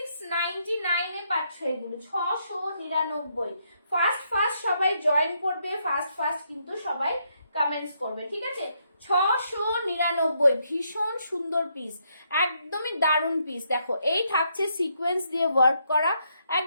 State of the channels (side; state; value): both; inverted; correlation -0.76